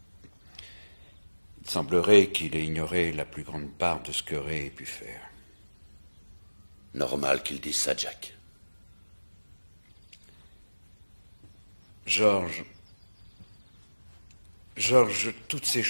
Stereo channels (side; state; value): both; inverted; correlation -1.00